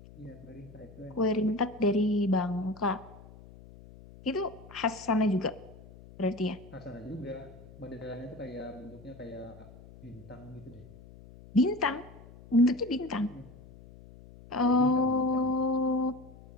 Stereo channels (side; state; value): left; noise; hum, 20 dB below the sound